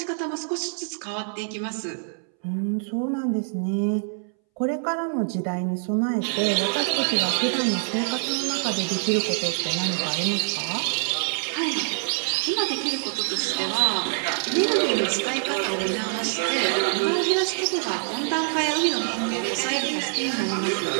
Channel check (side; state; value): left; silent; 62 dB below the other